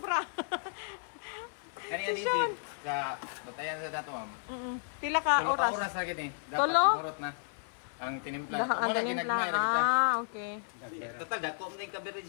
Kani Si Sean. adhesive sa batayan sa dato, ma'am. Pila ka Tulo ka oras? oras ra gid eh. Dapat Tulo? mahurot na ang tinimpla. Lahat ang Wala, tinimpla. ginagmay ra kita. Okay. Total dako man yung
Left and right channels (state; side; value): silent; right; 56 dB below the other